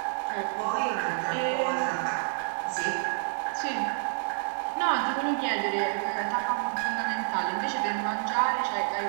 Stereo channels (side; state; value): left; silent; digital silence